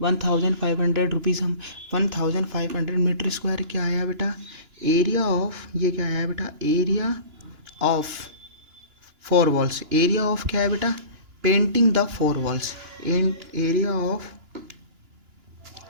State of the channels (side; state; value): left; late; 2.9 ms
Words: 1,500 रुपीज़, हम 1,500 मीटर स्क्वायर क्या आया बेटा एरिया ऑफ, ये क्या आया बेटा area of 4 walls, area of क्या है बेटा painting the 4 walls, area of,